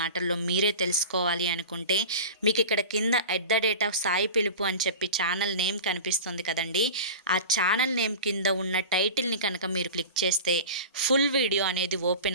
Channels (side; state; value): both; inverted; correlation -0.32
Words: మాటల్లో మీరే తెలుసుకోవాలి అనుకుంటే మీకు ఇక్కడ కింద @సాయి పిలుపు అని చెప్పి ఛానల్ నేమ్ కనిపిస్తుంది కదండి. ఆ ఛానల్ నేమ్ కింద ఉన్న టైటిల్ని కనుక మీరు క్లిక్ చేస్తే ఫుల్ వీడియో అనేది